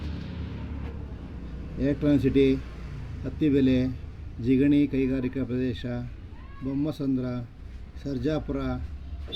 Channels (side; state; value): both; identical; correlation 1.00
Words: ಎಲೆಕ್ಟ್ರಾನಿಕ್ ಸಿಟಿ, ಅತ್ತಿಬೆಲೆ, ಜಿಗಣಿ ಕೈಗಾರಿಕಾ ಪ್ರದೇಶ, ಬೊಮ್ಮಸಂದ್ರ, ಸರ್ಜಾಪುರ,